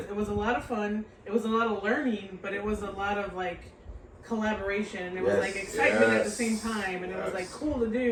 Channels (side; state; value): both; identical; correlation 1.00